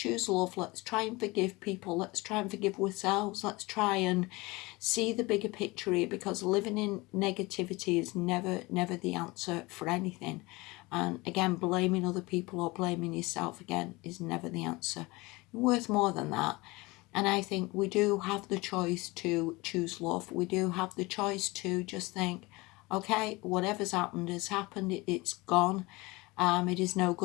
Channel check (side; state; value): right; quieter; 23.0 dB